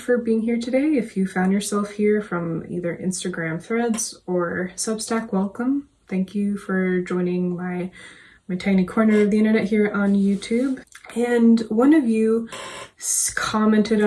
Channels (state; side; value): identical; both; correlation 1.00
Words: for being here today. If you found yourself here from either Instagram threads or Substack, welcome. Thank you for joining my tiny corner of the internet here on YouTube. And one of you commented